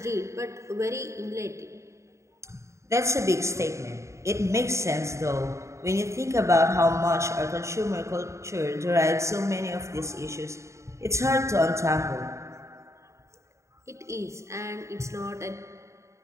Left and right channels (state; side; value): late; left; 0.14 ms